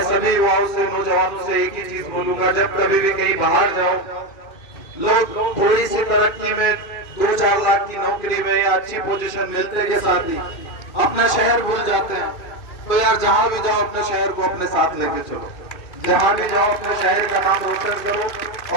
सभी युवाओं से, नौजवानों से एक ही चीज बोलूंगा, जब कभी भी कहीं बाहर जाओ, लोग थोड़ी सी तरक्की में, 2-4 लाख की नौकरी में या अच्छी पोजीशन मिलते के साथ ही अपना शहर भूल जाते हैं। तो यार, जहां भी जाओ अपने शहर को अपने साथ लेके चलो, जहां भी जाओ अपने शहर का नाम रोशन करो।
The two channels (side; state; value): right; late; 2.5 ms